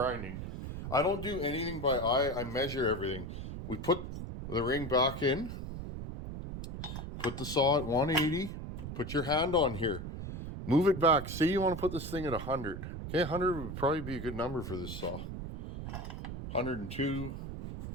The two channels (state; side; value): noise; right; rumble, 7 dB below the sound